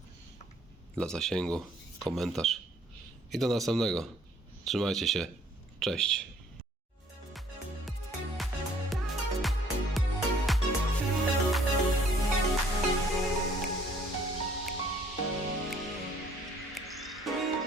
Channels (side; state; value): both; normal; correlation 0.60